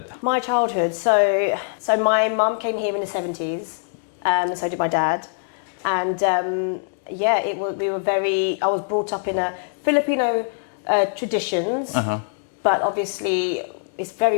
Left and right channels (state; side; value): silent; right; digital silence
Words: My childhood. So my mum came here in the 70s. So did my dad. And I was brought up in a Filipino traditions, but obviously it's